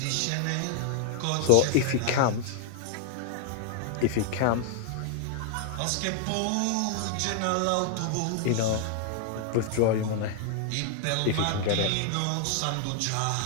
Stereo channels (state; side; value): different; both; correlation 0.00